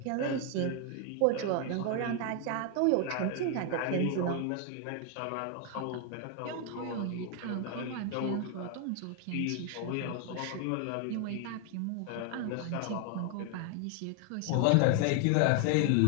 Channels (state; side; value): different; both; correlation 0.00